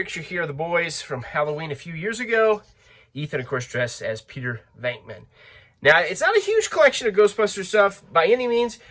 here of the boys from Halloween a few years ago. Ethan, of course, dressed as Peter Venkman. Now, it's not a huge collection of Ghostbusters stuff by any means.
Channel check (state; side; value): identical; both; correlation 1.00